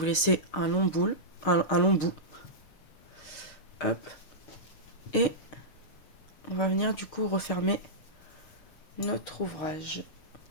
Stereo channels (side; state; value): right; late; 6.5 ms